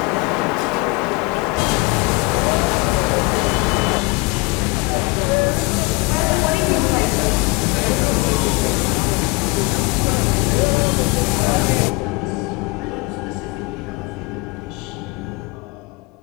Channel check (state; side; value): quieter; right; 25.6 dB